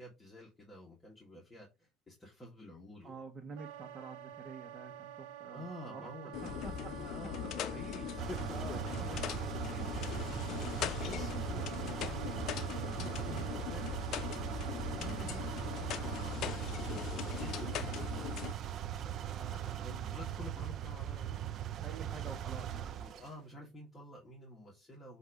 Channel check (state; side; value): normal; both; correlation 0.34